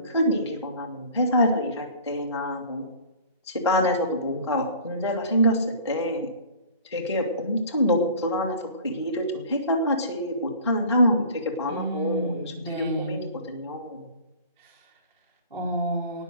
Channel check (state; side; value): inverted; both; correlation -0.44